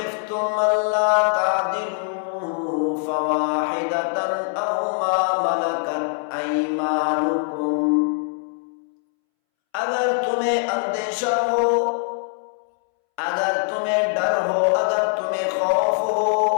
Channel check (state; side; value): silent; right; 64 dB below the other